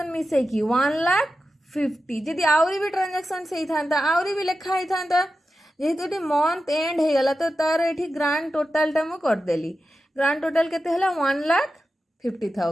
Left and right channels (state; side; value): normal; both; correlation 0.92